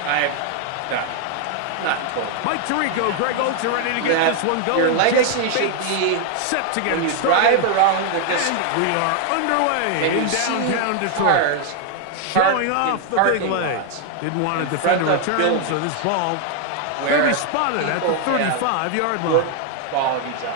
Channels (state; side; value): different; both; correlation 0.00